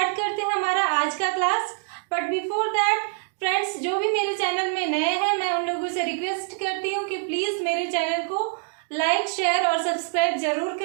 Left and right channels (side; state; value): left; silent; 62 dB below the other